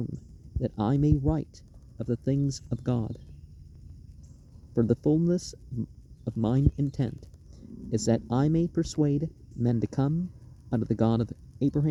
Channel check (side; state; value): both; identical; correlation 1.00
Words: that I may write of the things of God. For the fullness of mine intent is that I may persuade men to come unto the God of